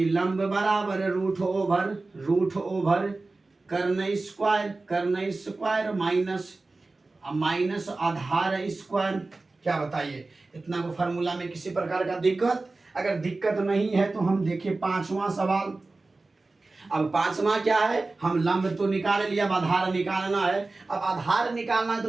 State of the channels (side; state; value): left; quieter; 3.4 dB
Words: लंब बराबर रूट ओवर कर्ण स्क्वायर माइनस आधार स्क्वायर। क्या बताइए, इतना को फार्मूला में किसी प्रकार का दिक्कत, अगर दिक्कत नहीं है तो हम देखें 5वां सवाल। अब 5वां क्या है, हम लंब तो निकाल लिया, अब आधार निकालना है। अब आधार निकालना है